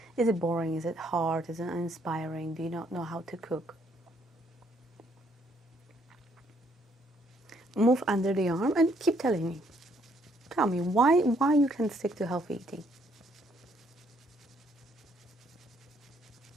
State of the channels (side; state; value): both; normal; correlation 0.69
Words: boring? Is it hard? Is it uninspiring? Do you not know how to cook? Move under the arm and keep telling me. Tell me why you can stick to healthy eating.